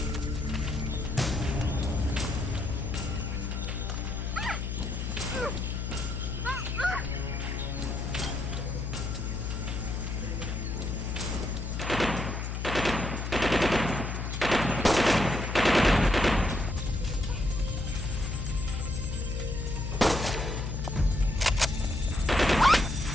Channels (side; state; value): left; noise; hum, 3 dB below the sound